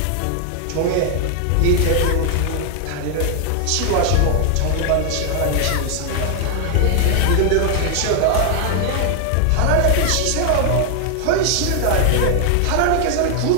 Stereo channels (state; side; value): different; both; correlation 0.00